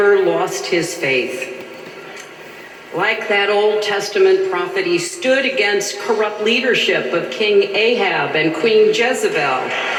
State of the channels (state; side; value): identical; both; correlation 1.00